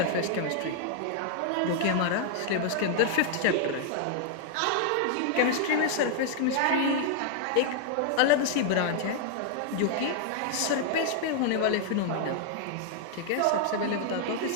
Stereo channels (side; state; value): both; different; correlation 0.00